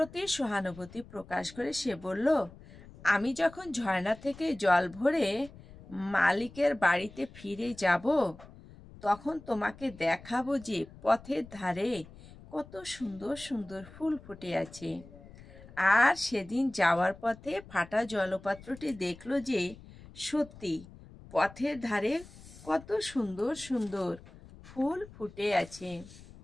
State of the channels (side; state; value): left; noise; rumble, 19 dB below the sound